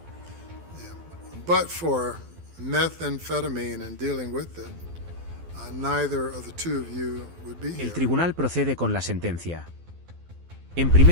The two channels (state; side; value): late; left; 12 ms